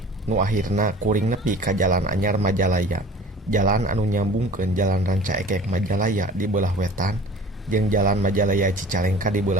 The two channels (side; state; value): both; normal; correlation 0.44